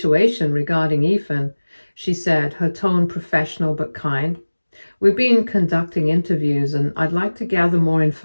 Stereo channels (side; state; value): both; inverted; correlation -1.00